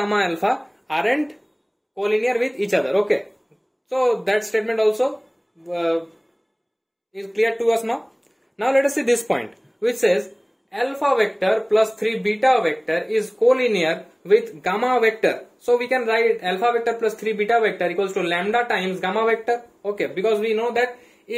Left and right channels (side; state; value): both; identical; correlation 1.00